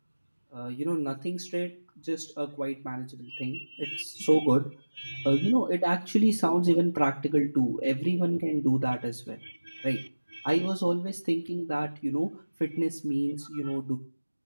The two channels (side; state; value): both; inverted; correlation -1.00